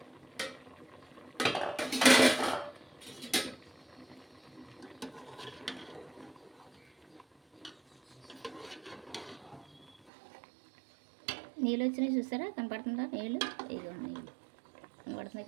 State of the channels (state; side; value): drops out; left; at 10.1 s